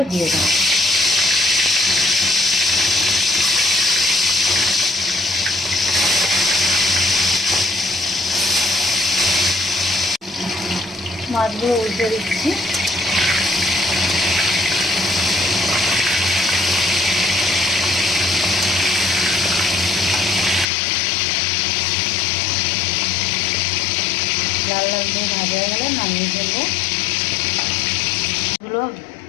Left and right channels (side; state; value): right; drops out; at 20.7 s